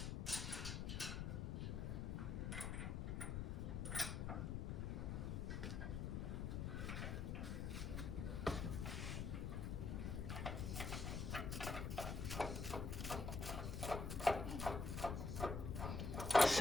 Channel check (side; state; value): left; noise; rumble, 1 dB below the sound